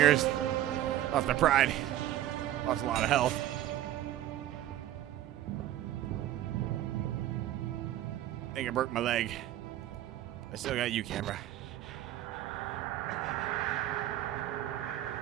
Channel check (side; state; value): left; quieter; 13.3 dB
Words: Lost my pride. Lost a lot of health. I think I broke my leg. I still got you, camera.